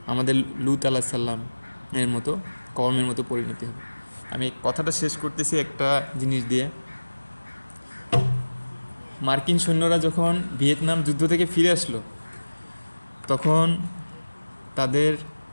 আমাদের লূত আলাইহিস সালাম এর মতো, কওমের মতো পরিণতি হবে। আমি কথাটা শেষ করতেছি একটা জিনিস দিয়ে। মার্কিন সৈন্যরা যখন ভিয়েতনাম যুদ্ধ থেকে ফিরে আসলো, তখন তাদের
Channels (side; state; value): both; inverted; correlation -1.00